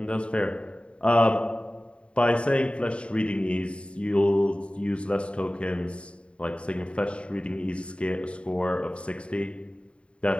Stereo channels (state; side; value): late; right; 0.058 ms